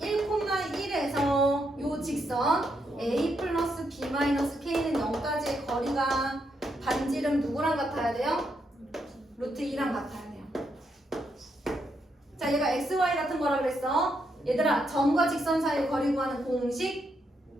1,1에서 요 직선 a 플러스 b 마이너스 k는 0까지의 거리가 반지름 누구랑 같아야 돼요? 루트 2랑 같아야 돼요. 자 얘가 xy 같은 거라 그랬어. 얘들아 점과 직선 사이 거리 구하는 공식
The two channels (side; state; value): both; normal; correlation 0.79